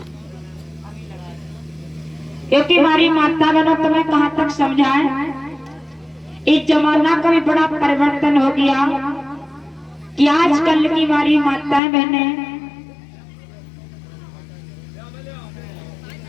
क्योंकि हमारी माता बहनों तुम्हें कहां तक समझाएं। इस जमाना का भी बड़ा परिवर्तन हो गया कि आजकल की हमारी माताएं बहनें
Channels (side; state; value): right; drops out; at 11.8 s